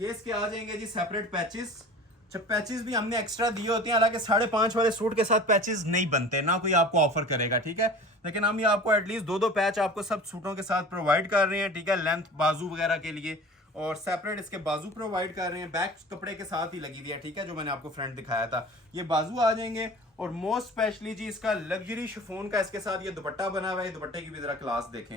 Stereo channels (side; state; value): both; normal; correlation 0.40